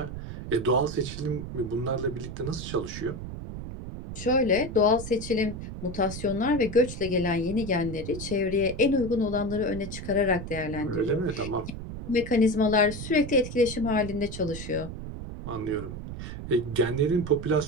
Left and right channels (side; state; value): right; noise; rumble, 9 dB below the sound